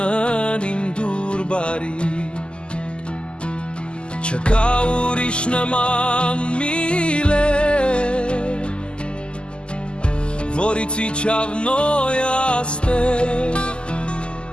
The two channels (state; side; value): late; right; 0.050 ms